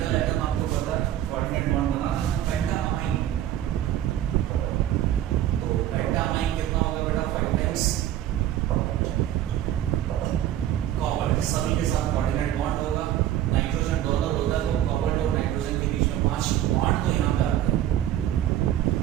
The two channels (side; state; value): left; quieter; 12.1 dB